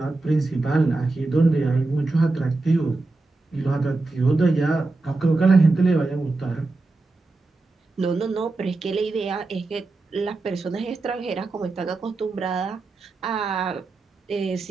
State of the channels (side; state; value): left; quieter; 3.3 dB